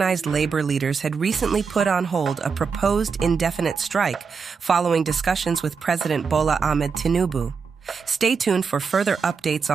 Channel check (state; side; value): quieter; left; 5.6 dB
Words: labor leaders had recently put on hold a proposed indefinite strike following discussions with President Bola Tinubu. Stay tuned for further updates